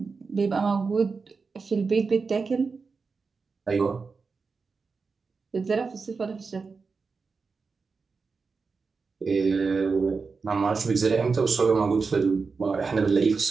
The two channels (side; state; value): left; quieter; 4.7 dB